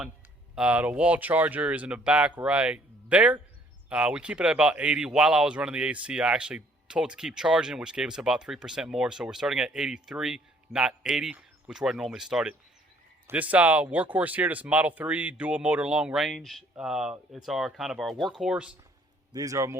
The wall charger is in the back right there. We keep it at about 80. While I was running the AC, I actually told it to keep charging, which gave us about 3% more. So we're starting at 83, not 80, which is where I normally start it. This workhorse here, this Model 3 dual motor long range, it's our kind of our workhorse. These are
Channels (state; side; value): normal; both; correlation 0.61